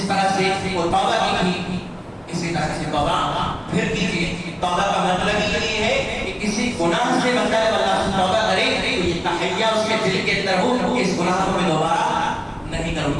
طرح سے وہ توبہ کی تھی اسی طرح سے توبہ پھر کیجیے۔ توبہ کا مطلب یہ ہے کہ کسی گناہ سے بندہ اللہ سے توبہ کرے تو یہ تحیہ اس کے دل کے اندر ہو کہ اس گناہ کو میں دوبارہ نہیں کروں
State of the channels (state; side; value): identical; both; correlation 1.00